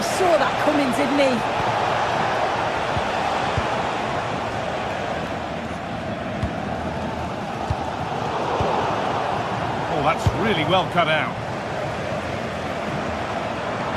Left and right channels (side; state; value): both; identical; correlation 1.00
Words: saw that coming, didn't he? That's really well cut out.